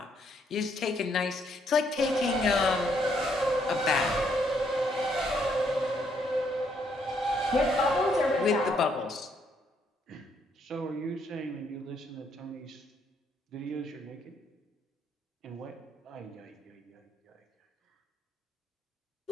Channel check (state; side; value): normal; both; correlation 0.72